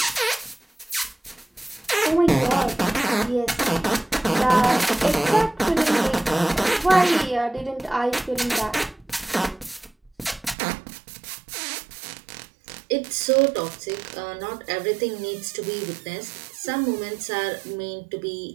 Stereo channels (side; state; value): left; drops out; at 10.6 s